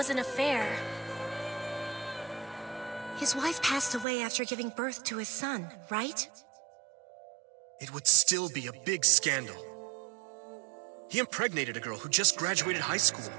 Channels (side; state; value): left; drops out; at 4.0 s